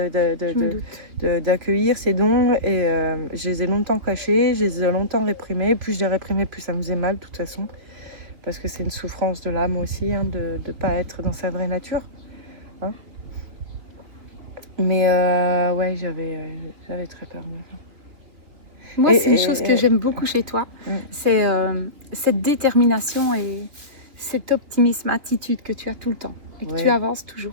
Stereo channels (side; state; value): left; late; 3.0 ms